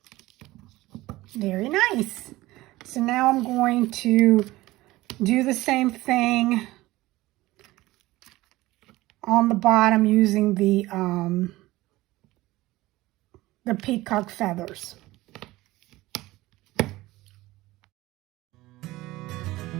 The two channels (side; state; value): left; quieter; 18.3 dB